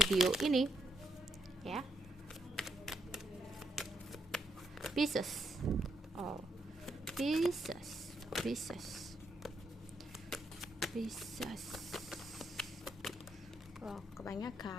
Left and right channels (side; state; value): both; normal; correlation 0.77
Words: ini ya. Pisces. Oh, Pisces. Oh,